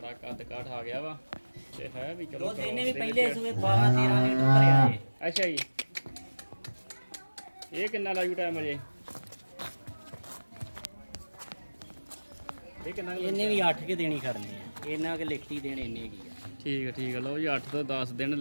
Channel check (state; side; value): inverted; both; correlation -1.00